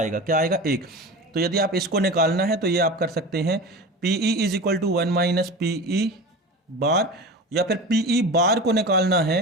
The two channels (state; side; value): normal; both; correlation 0.31